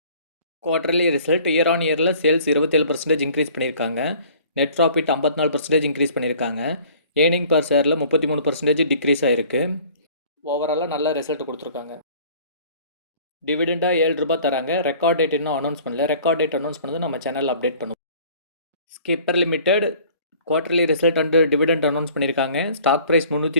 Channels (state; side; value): inverted; both; correlation -0.51